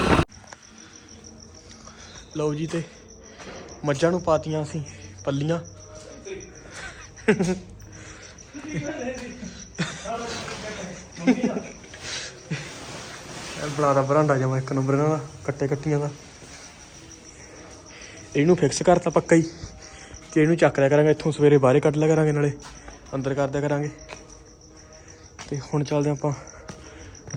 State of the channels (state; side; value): identical; both; correlation 1.00